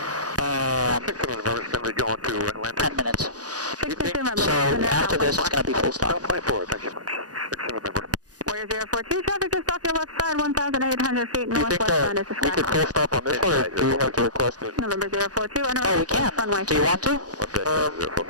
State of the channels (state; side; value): late; left; 0.68 ms